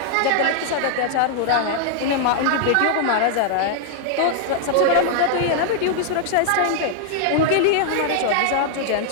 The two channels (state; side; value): different; both; correlation -0.01